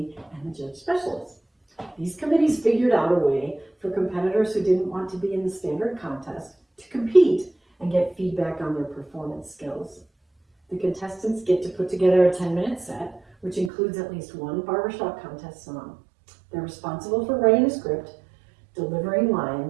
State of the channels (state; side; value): drops out; left; at 13.7 s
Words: and the judge specialists. These committees figured out a way for competitors who didn't want to be in the standard contest to compete and get feedback on their performance skills. The contestants get to put together a 10-minute set, which includes at least one barbershop contest song. They're responsible for writing a script, delivering